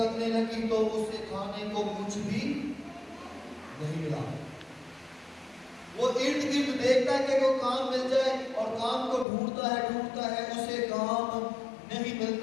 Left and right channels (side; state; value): right; drops out; at 9.2 s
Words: لگی تو اسے کھانے کو کچھ بھی نہیں ملا۔ وہ ارد گرد دیکھتا ہے کہ کوئی کام مل جائے، اور کام کو ڈھونڈتا ہے، اسے کام نہیں